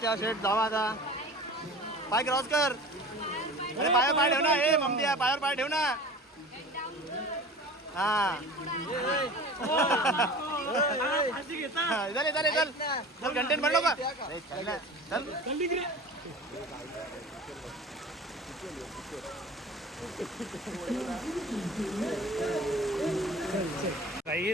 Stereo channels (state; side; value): normal; both; correlation 0.38